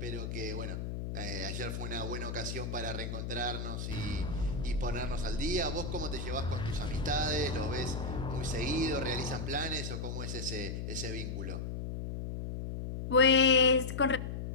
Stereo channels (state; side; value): noise; left; hum, 5 dB below the sound